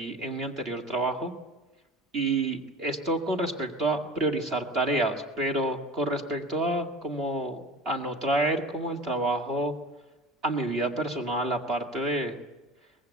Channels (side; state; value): both; normal; correlation 0.36